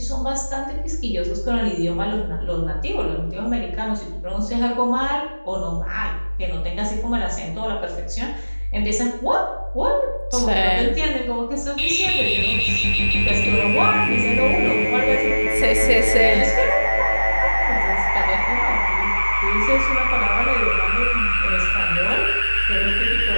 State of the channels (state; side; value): inverted; both; correlation -1.00